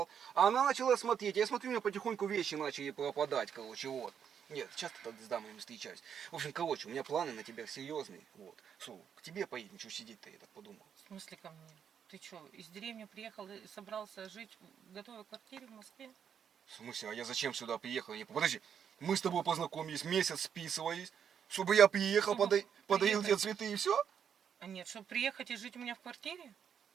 А она начала смотреть. Я смотрю, у меня потихоньку вещи начали пропадать, короче, вот. Нет, часто так с дамами встречаюсь. В общем, короче, у меня планы на тебя серьезные. Вот. К тебе поедем, что сидеть-то, я так подумал. В смысле ко мне? Ты что, из деревни приехал и собрался жить в готовой квартире в Москве? В смысле, а я зачем сюда приехал? Подожди, мы с тобой познакомились, месяц списывались, чтобы я приехал, Чтобы подарил тебе приехать. цветы и все? А нет, чтобы приехать и жить у меня в квартире?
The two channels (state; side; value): quieter; left; 8.0 dB